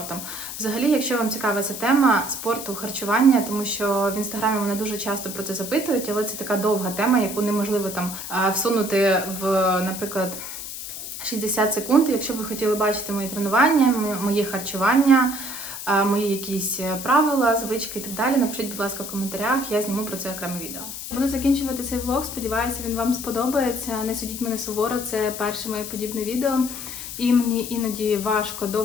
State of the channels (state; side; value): noise; left; hiss, 8 dB below the sound